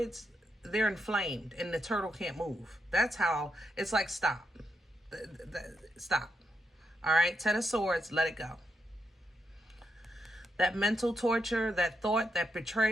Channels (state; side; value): normal; both; correlation 0.82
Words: they're inflamed and the turtle can't move. That's how, it's like stop. Stop. All right? 10 of Swords, let it go. That mental torture, that thought, that